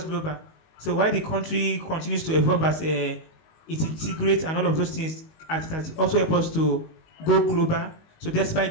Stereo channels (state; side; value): late; right; 19 ms